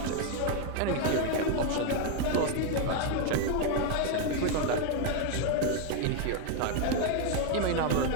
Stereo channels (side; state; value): both; different; correlation 0.01